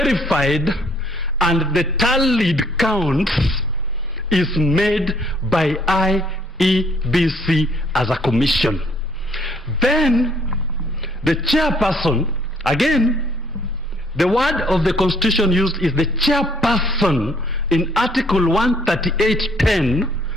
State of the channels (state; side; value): normal; both; correlation 0.64